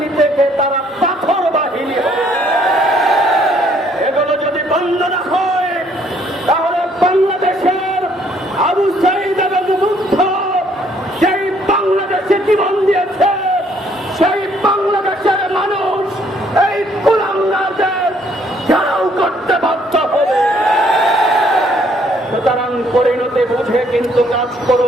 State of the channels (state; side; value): normal; both; correlation 0.65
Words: থেকে তারা পাথর বাহিনী হয়েছে। এগুলো যদি বন্ধ না হয় তাহলে বাংলাদেশের আবু সাঈদ এবং মুগ্ধ সেই বাংলাদেশে জীবন দিয়েছে, সেই বাংলাদেশের মানুষ এই কুলাঙ্গারদের ঘেরাও করতে বাধ্য হবে। সুতরাং পরিণতি বুঝে কিন্তু কাজ